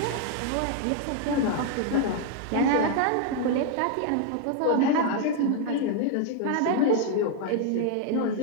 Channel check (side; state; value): both; different; correlation 0.00